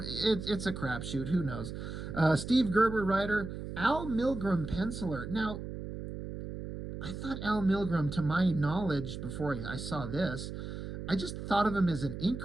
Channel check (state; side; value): noise; right; hum, 7 dB below the sound